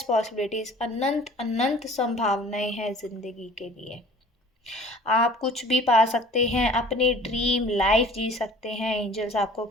पॉसिबिलिटीज़, अनंत अनंत संभावनाएं हैं ज़िंदगी के लिए। आप कुछ भी पा सकते हैं, अपनी ड्रीम लाइफ जी सकते हैं। एंजल्स आपको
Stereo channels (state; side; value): normal; both; correlation 0.48